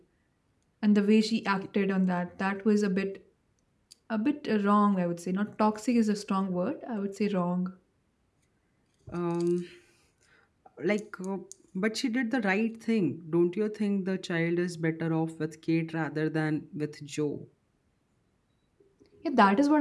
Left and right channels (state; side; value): identical; both; correlation 1.00